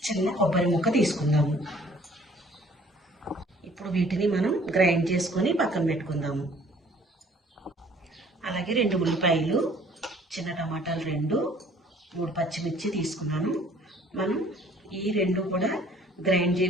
చిన్న కొబ్బరి ముక్క తీసుకుందాము. ఇప్పుడు వీటిని మనం గ్రైండ్ చేసుకొని పక్కన పెట్టుకుందాము. అలాగే 2 ఉల్లిపాయలు, చిన్న టమాటాలు 2, 3 పచ్చిమిర్చి తీసుకున్నాను. మనం ఈ 2 కూడా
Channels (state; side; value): normal; both; correlation 0.56